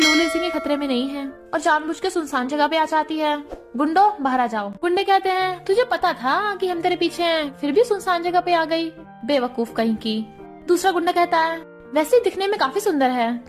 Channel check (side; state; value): both; identical; correlation 1.00